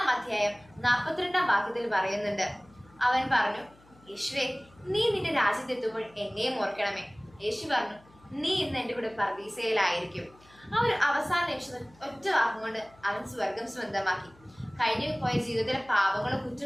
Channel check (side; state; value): left; noise; hum, 28 dB below the sound